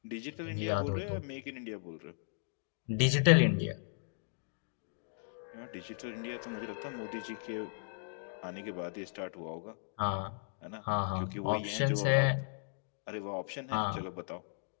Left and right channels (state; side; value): silent; right; digital silence